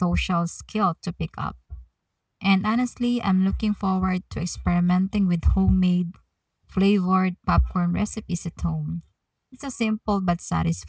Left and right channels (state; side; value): identical; both; correlation 1.00